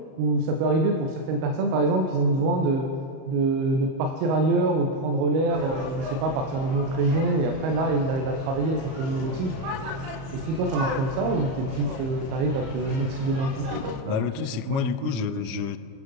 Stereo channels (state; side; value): late; left; 37 ms